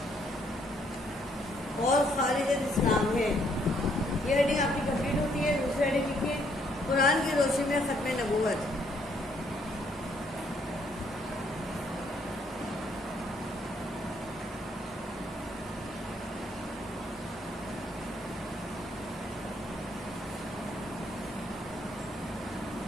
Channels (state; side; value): normal; both; correlation 0.69